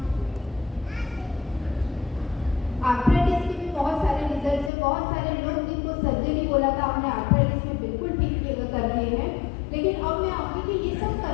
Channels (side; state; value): right; drops out; at 4.7 s